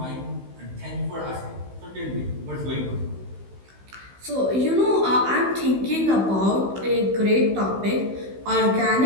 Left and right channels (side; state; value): left; late; 16 ms